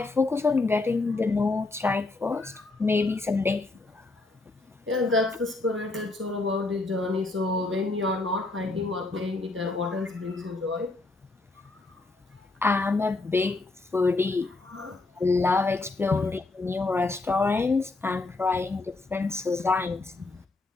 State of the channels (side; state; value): right; quieter; 3.4 dB